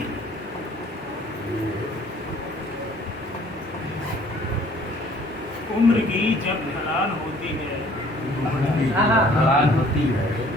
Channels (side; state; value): both; normal; correlation 0.56